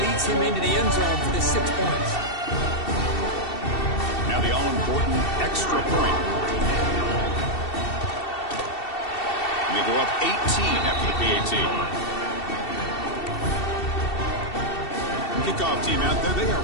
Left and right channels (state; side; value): late; right; 2.7 ms